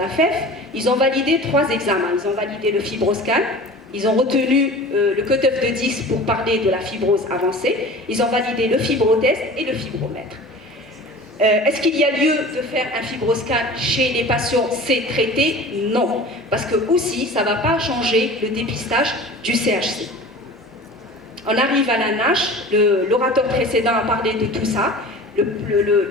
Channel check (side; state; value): both; normal; correlation 0.39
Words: FEF. Ils ont validé 3 examens. Ils ont validé le fibroscan, ils ont retenu le cutoff de 10 pour parler de la fibrose avancée, ils ont validé le fibrotest et le fibromètre. Est-ce qu'il y a lieu de faire un fibroscan chez les patients C traités? Non, parce que aussi ça ne va pas changer le dépistage du CHC. On arrive à la NASH, l'orateur précédent a parlé de tout ça.